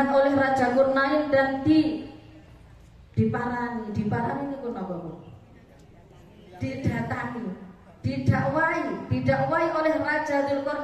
oleh Raja Dzulqarnain dan diparani itu apa Bu? Didatangi, didakwai oleh Raja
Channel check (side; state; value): both; identical; correlation 1.00